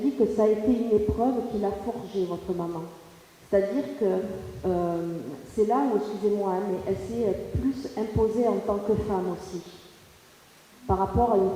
dit que ça a été une épreuve qui l'a forgée, votre maman. C'est-à-dire que c'est là où, excusez-moi, hein, mais elle s'est plus imposée en tant que femme aussi, par rapport à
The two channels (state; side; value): identical; both; correlation 1.00